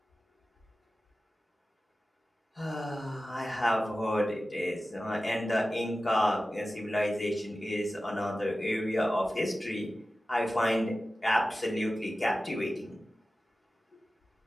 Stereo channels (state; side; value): normal; both; correlation 0.95